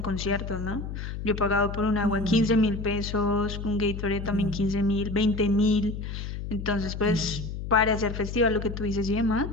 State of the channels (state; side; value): noise; left; hum, 6 dB below the sound